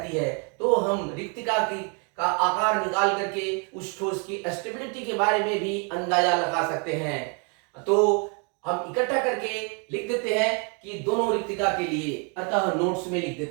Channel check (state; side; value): quieter; left; 35.3 dB